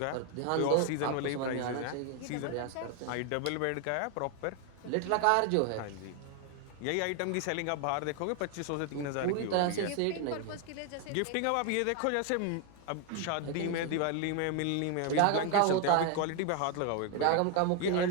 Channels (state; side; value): different; both; correlation 0.01